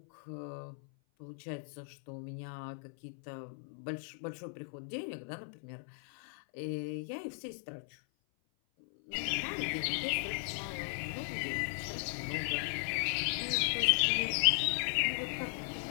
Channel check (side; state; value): right; silent; 53 dB below the other